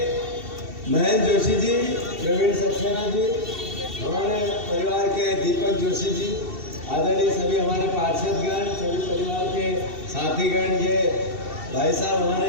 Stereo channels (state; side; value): late; left; 2.7 ms